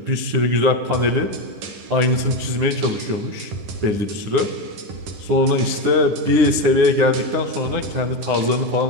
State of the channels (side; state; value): left; late; 9.7 ms